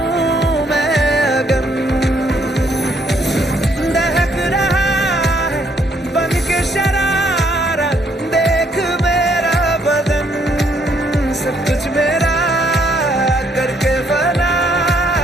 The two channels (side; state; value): both; normal; correlation 0.69